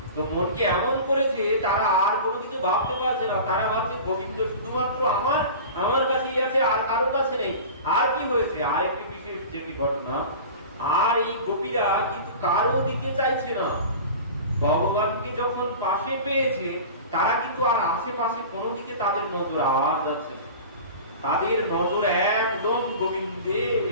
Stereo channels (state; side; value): inverted; both; correlation -0.36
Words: তো মনকে এমন করেছে, তারা আর কোনো কিছু ভাবতে পারছে না, তারা ভাবছে গোবিন্দ শুধুমাত্র আমার কাছেই আছে, আর কারো কাছে নেই। আর কি হয়েছে, আর একটি বিশেষ যেটি ঘটনা, আর এই গোপীরা কিন্তু কারো দিকে চাইছে না। ভগবানকে যখন পাশে পেয়েছে তারা কিন্তু আর আশেপাশে কোনো দিকে তাদের নজর আর যাচ্ছে না, তাদের নজর একদম গোবিন্দে